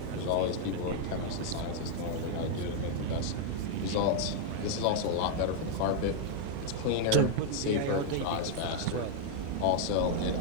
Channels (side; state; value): both; different; correlation 0.00